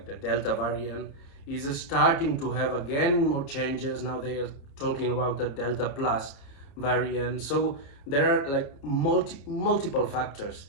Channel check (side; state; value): right; late; 29 ms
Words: the Delta variant, is starting to have again more changes. Now they are talking about the Delta Plus variant. So there are multiple factors